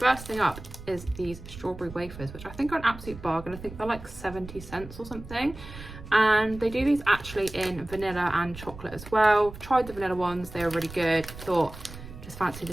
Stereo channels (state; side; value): noise; right; rumble, 14 dB below the sound